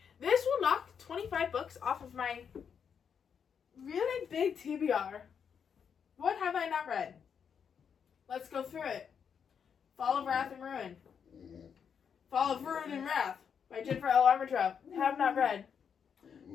this will knock 25 books off of my really big TBR. What have I not read? Let's go through it. Fall of Wrath and Ruin. Fall of Ruin and Wrath by Jennifer L. Armentrout. Have not read.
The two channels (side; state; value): right; quieter; 7.2 dB